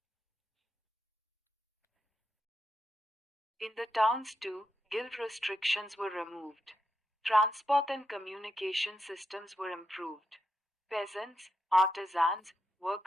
In the towns too, guild restrictions were removed. Transport and communication systems were improved. Peasants, artisans,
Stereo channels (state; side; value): normal; both; correlation 0.85